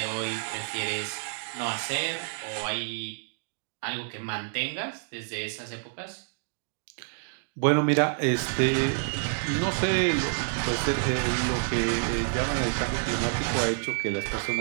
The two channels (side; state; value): left; silent; 59 dB below the other